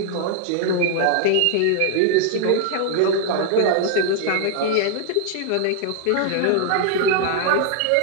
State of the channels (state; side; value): different; both; correlation 0.00